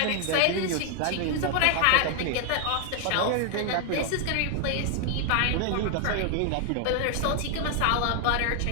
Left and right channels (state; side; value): different; both; correlation 0.00